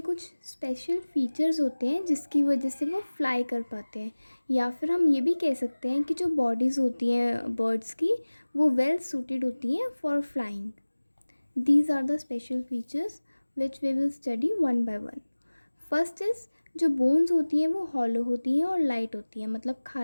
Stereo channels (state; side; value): inverted; both; correlation -1.00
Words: कुछ स्पेशल फीचर्स होते हैं जिसकी वजह से वो फ्लाई कर पाते हैं, या फिर हम ये भी कह सकते हैं कि जो बॉडीज़ होती हैं बर्ड्स की वो वेल सूटेड होती हैं for flying. These are the special features which we will study one by one. First is, जो बोन्स होती हैं वो हॉलो होती हैं और लाइट होती हैं, मतलब